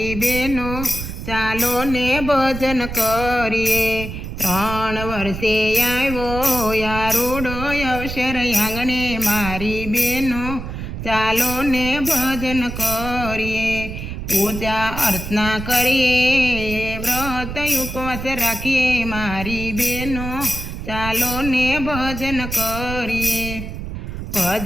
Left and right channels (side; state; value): right; noise; rumble, 7 dB below the sound